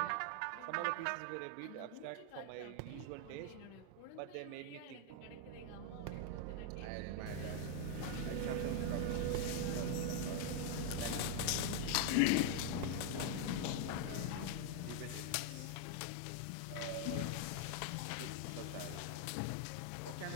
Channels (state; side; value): different; both; correlation 0.00